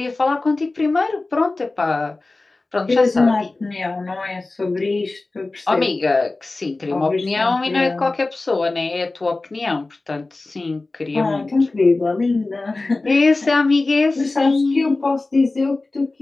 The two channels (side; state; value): right; quieter; 3.3 dB